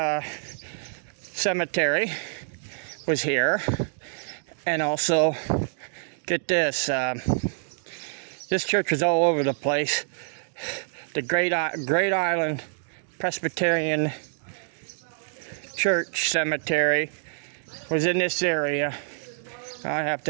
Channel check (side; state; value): left; silent; digital silence